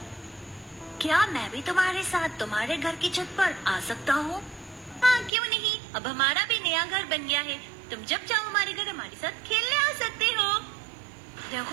क्या मैं भी तुम्हारे साथ तुम्हारे घर की छत पर आ सकता हूँ? हाँ, क्यों नहीं। अब हमारा भी नया घर बन गया है। तुम जब चाहो हमारे घर हमारे साथ खेलने आ सकते हो।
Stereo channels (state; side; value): drops out; left; at 5.3 s